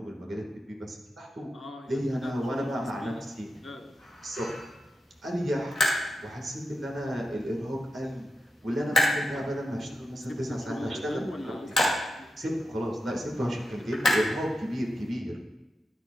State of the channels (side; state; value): both; normal; correlation 0.90